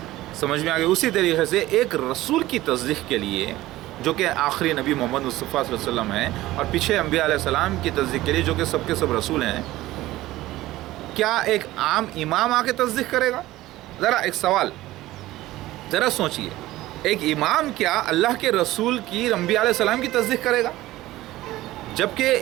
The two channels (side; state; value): left; quieter; 16.6 dB